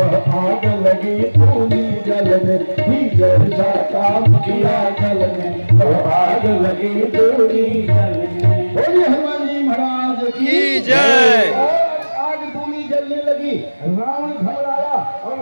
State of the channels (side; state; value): both; inverted; correlation -1.00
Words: आग लगी पूरी जल में। ही जैसा काम किया जल में वह आग लगी पूरी जल में। बोलिए हनुमान जी महाराज की जय। जलने लगी, रावण घबराया और